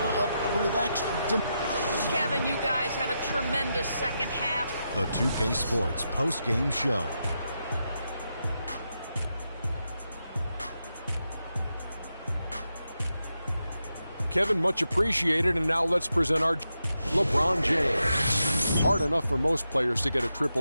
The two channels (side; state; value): both; inverted; correlation -0.86